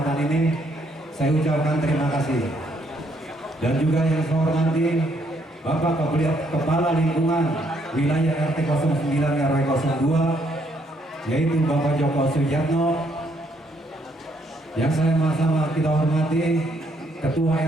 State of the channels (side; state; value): both; normal; correlation 0.71